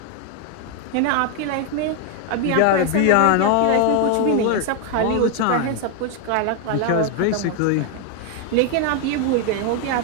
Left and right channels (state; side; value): different; both; correlation 0.00